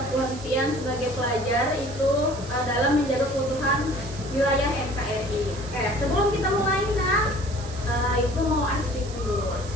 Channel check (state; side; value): noise; right; hiss, 16 dB below the sound